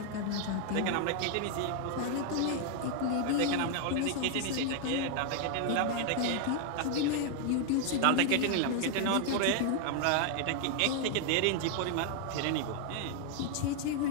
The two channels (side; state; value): both; different; correlation 0.00